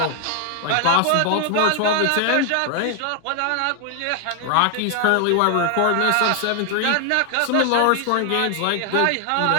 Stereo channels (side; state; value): both; different; correlation 0.00